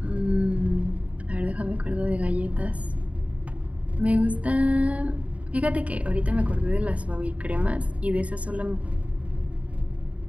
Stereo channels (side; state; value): left; late; 0.067 ms